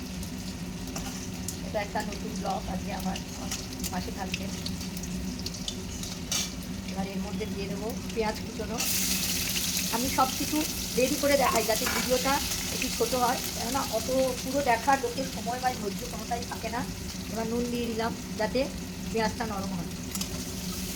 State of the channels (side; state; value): both; identical; correlation 1.00